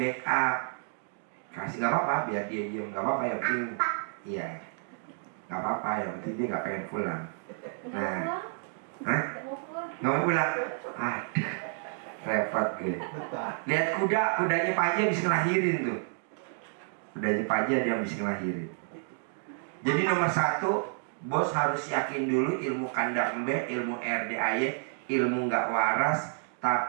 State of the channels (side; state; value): left; silent; 58 dB below the other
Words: Kasih nggak apa-apa, biar dia diem, nggak apa-apa, yang penting iya, nggak apa-apa, yang penting dia nggak pengen pulang. Nah, hah? Nggak mau pulang? Aduh, repot gue. Lihat kudanya Pak Haji habis ngelahirin tuh. Kudanya Pak Haji dia habis ngelahirin. Jadi nomor 1, bos harus yakin dulu ilmu kandang embe, ilmu RDAY, ilmu nggak waras,